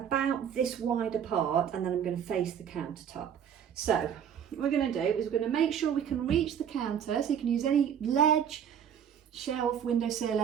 this wide apart, and then I'm going to face the countertop. So what we're going to do is we're going to make sure we can reach the counter, so you can use any ledge, shelf, windowsill,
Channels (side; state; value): left; quieter; 8.6 dB